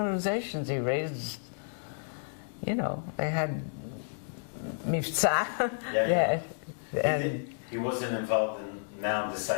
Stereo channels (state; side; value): silent; right; digital silence